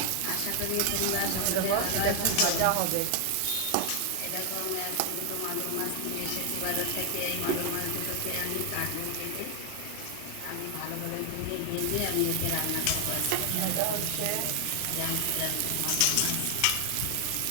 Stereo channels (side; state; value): both; different; correlation 0.00